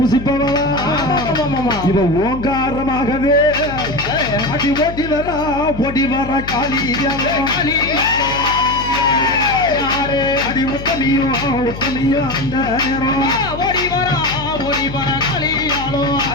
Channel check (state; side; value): noise; left; hum, 10 dB below the sound